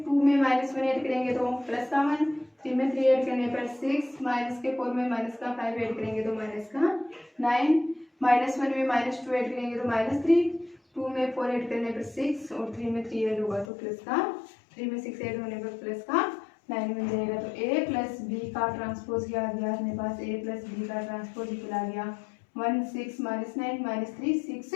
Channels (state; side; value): drops out; right; at 13.7 s